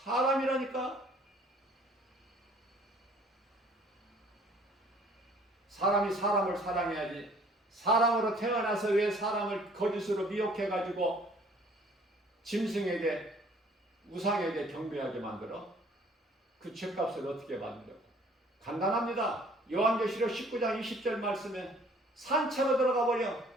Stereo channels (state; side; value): normal; both; correlation 0.56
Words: 사람이 사람을 사랑해야지. 사람으로 태어나서 왜 사람을 거짓으로 미혹해가지고 짐승에게, 우상에게 경배하게 만들어? 그 죄값을 어떻게 받으려고? 간단합니다. 요한계시록 19장 20절 말씀에 산채로 들어가 버려.